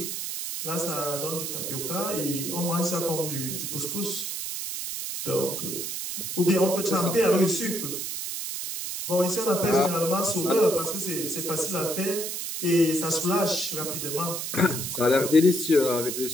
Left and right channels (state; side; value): noise; right; hiss, 4 dB below the sound